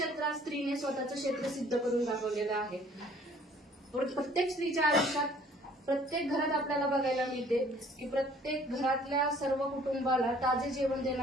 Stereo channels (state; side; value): normal; both; correlation 0.56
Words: स्त्रीने स्वतःचं क्षेत्र सिद्ध करून दाखवलेलं आहे। प्रत्येक स्त्रीच्या आयुष्यात प्रत्येक घरात आपल्याला बघायला मिळते की प्रत्येक घरातल्या सर्व कुटुंबाला ताजे जेवण